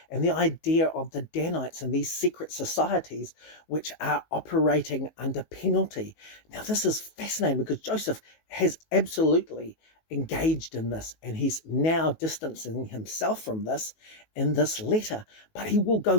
and the idea of the Danites and these secret societies which are operating under penalty. Now, this is fascinating because Joseph has absolutely engaged in this, and he's now distancing himself from this in this letter. But he will go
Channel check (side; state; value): right; late; 19 ms